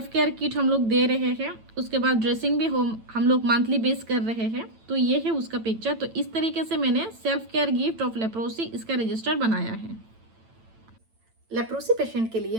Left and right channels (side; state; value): left; late; 9.0 ms